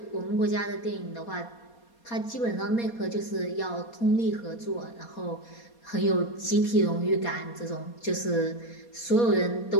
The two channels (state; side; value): late; right; 4.2 ms